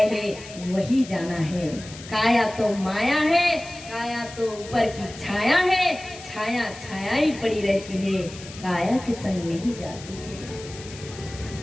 हैं, वही जाना है। काया तो माया है, काया तो ऊपर की छाया है, छाया ही पड़ी रहती है, काया के संग नहीं जाती है।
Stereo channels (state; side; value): noise; left; hiss, 16 dB below the sound